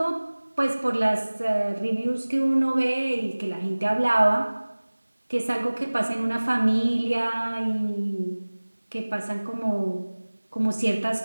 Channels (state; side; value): inverted; both; correlation -1.00